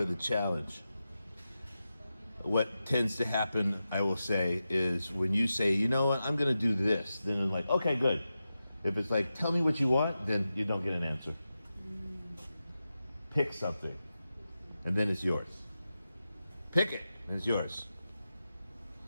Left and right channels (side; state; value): both; inverted; correlation -0.92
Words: the challenge. What tends to happen, I will say, is when you say, you know what, I'm going to do this, then I'm like, okay, good. If it's like, tell me what you want, then you don't get an answer. Pick something, and then it's yours. Pick it, and it's yours.